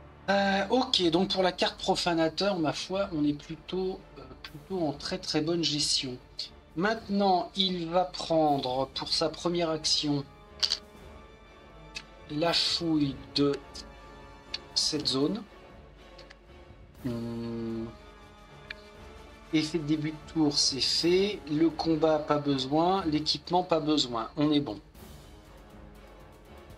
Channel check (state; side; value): identical; both; correlation 1.00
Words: Ok, donc pour la carte profanateur, ma foi, on est plutôt en très très bonne gestion. Maintenant, il va prendre pour sa première action la fouille de cette zone. Effet de début de tour, c'est fait. Le combat, pas besoin. L'équipement, pas besoin. On est bon.